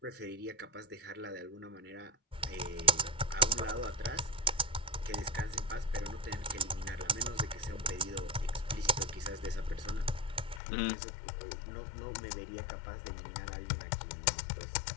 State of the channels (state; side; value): drops out; right; at 10.6 s